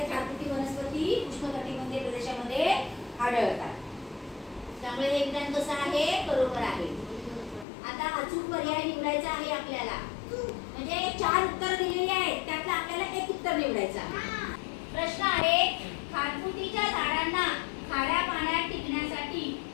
खारफुटी वनस्पती उष्णकटिबंधीय प्रदेशामध्ये आढळतात. त्यामुळे हे विधान कसं आहे बरोबर आहे. आता अचूक पर्याय निवडायचा आहे आपल्याला. म्हणजे 4 उत्तर दिलेली आहेत त्यातलं आपल्याला एक उत्तर निवडायचं आहे. प्रश्न आहे खारफुटीच्या झाडांना खाऱ्या पाण्यात टिकण्यासाठी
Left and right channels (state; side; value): drops out; right; at 7.7 s